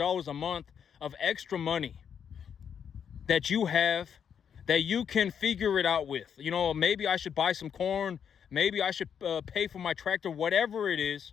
a month of extra money that you have, that you can figure it out with. Maybe I should buy some corn. Maybe I should pay for my tractor, whatever it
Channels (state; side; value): quieter; right; 7.8 dB